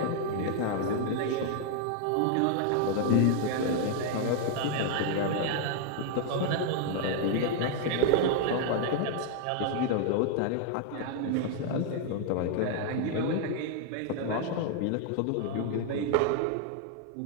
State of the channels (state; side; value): different; both; correlation 0.00